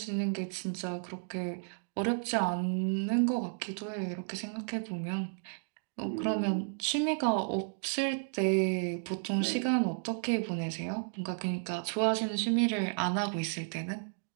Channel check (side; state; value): left; silent; digital silence